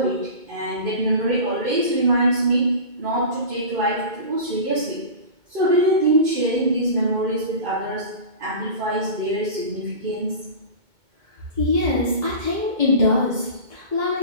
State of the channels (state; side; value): late; left; 2.2 ms